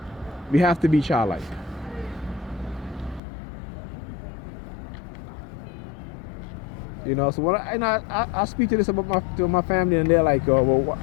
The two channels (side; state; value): right; drops out; at 3.2 s